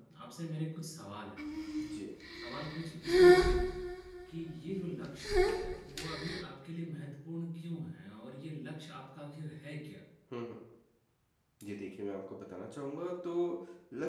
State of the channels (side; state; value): both; identical; correlation 1.00